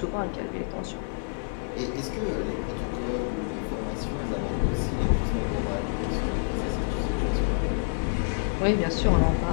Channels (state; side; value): silent; right; 56 dB below the other